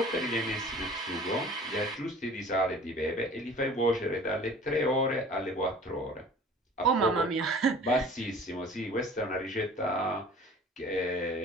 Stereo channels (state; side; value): normal; both; correlation 0.46